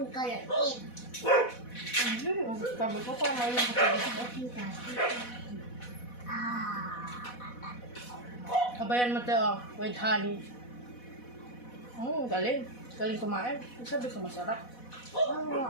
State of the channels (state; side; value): late; right; 4.1 ms